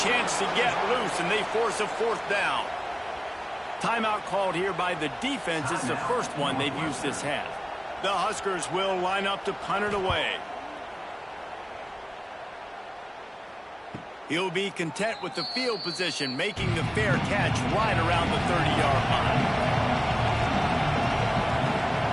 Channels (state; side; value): identical; both; correlation 1.00